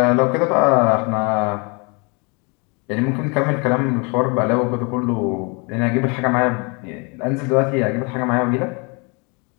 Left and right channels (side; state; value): right; quieter; 31.7 dB